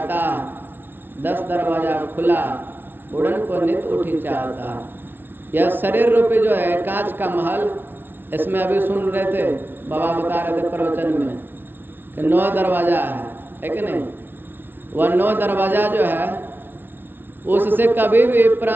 10 दरवाजा खुला, उड़न को नित उठी चाहता। यह शरीर रूपी जो है कांच का महल, इसमें अभी सुन रहे थे बाबा बता रहे थे प्रवचन में कि 9 दरवाजा है कि नहीं। वह 9 दरवाजा जो है उससे कभी भी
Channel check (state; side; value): late; left; 0.099 ms